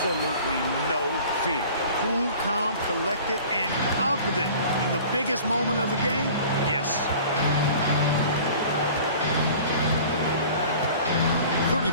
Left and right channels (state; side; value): inverted; both; correlation -0.44